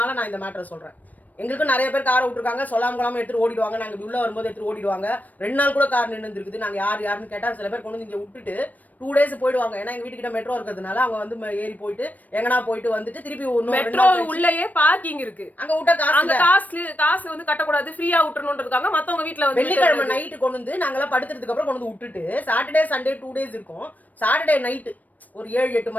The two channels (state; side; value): late; right; 0.078 ms